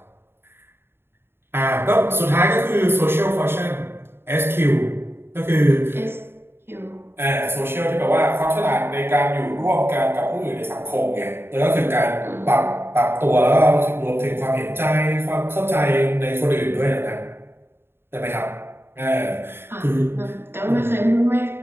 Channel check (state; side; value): late; left; 0.11 ms